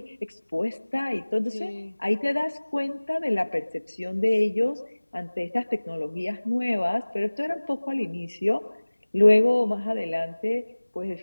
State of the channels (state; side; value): inverted; both; correlation -1.00